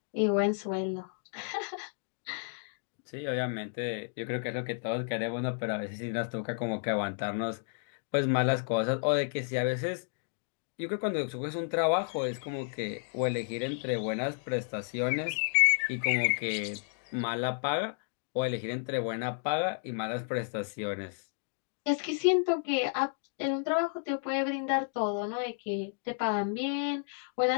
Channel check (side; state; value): right; silent; digital silence